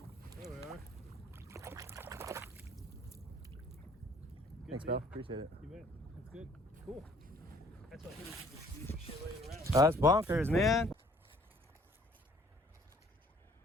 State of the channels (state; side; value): normal; both; correlation 0.58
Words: There we are. Thanks, pal. Appreciate it. You bet. That's good. Cool. That's what he was using for shit laying around. That's bonkers, man.